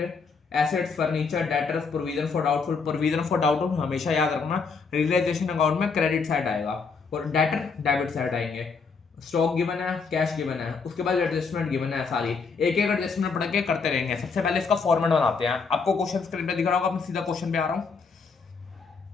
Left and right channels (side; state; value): right; quieter; 5.0 dB